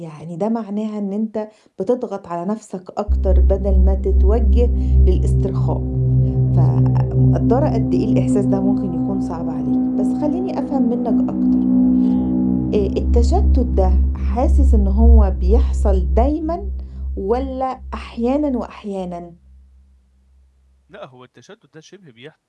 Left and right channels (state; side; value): identical; both; correlation 1.00